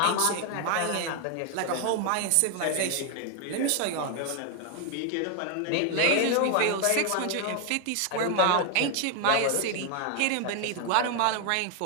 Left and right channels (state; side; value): different; both; correlation 0.01